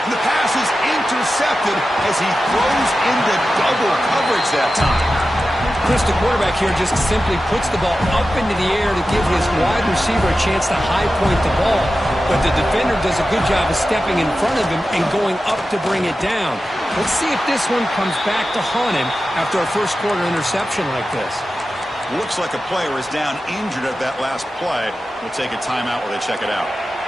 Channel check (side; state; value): both; normal; correlation 0.93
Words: the pass is intercepted as he throws into double coverage that time. Chris, the quarterback here just simply puts the ball up into the air to give his wide receiver a chance to high point the ball. But the defender does a good job of stepping in front of him and going up to bring it down. Let's see if this one comes back to haunt him after a first quarter interception like this. Looks like a player is down injured at that last play. We'll take a timeout while they check it out.